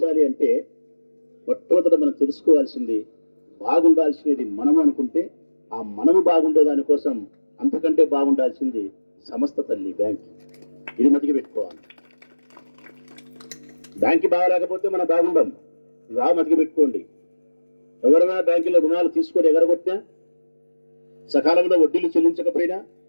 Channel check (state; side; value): inverted; both; correlation -1.00